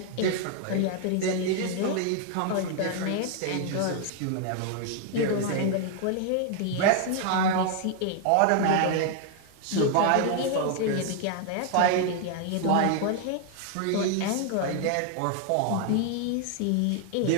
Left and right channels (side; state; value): both; different; correlation 0.00